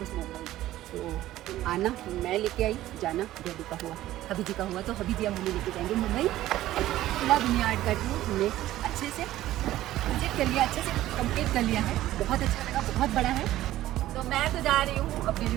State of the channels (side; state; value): left; quieter; 14.6 dB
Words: मुंबई। तो आना मैं लेके आई, जाना डैडी का हुआ, हबी जी का हुआ। तो हबी जी अब हमें लेके जाएंगे मुंबई। सुलह विनयार्ड का टूर हमने अच्छे से विजिट कर लिया, अच्छे से कंप्लीट कर लिया है। बहुत अच्छा लगा, बहुत बड़ा है। तो मैं तो जा रही हूँ अब